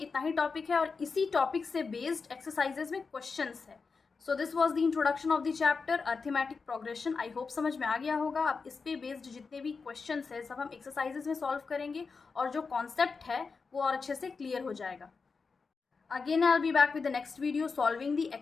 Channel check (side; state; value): right; quieter; 4.8 dB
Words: ही टॉपिक है, और इसी टॉपिक से बेस्ड एक्सरसाइजेज में क्वेश्चंस है। So this was the introduction of the chapter arithmetic progression. I hope समझ में आ गया होगा। अब इस पे बेस्ड जितने भी क्वेश्चंस है सब हम एक्सरसाइजेज में सॉल्व करेंगे, और जो कॉन्सेप्ट है वो और अच्छे से क्लियर हो जाएगा। Again, I'll be back with the next video solving the